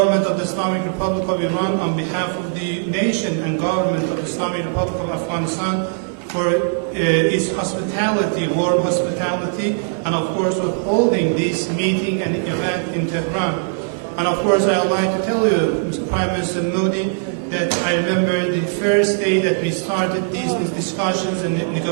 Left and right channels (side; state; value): left; silent; digital silence